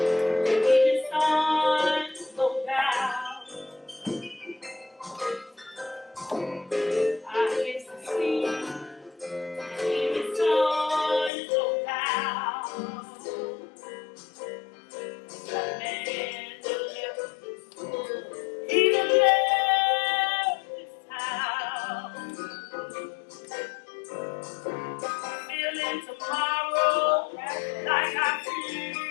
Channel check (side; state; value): right; drops out; at 11.3 s